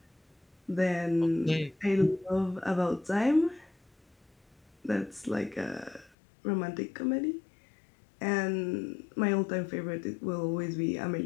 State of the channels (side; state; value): right; drops out; at 6.1 s